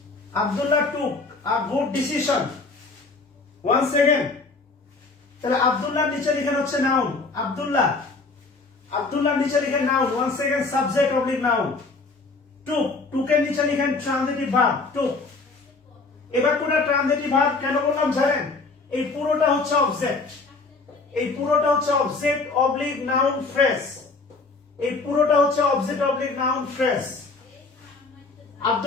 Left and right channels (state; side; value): quieter; right; 3.9 dB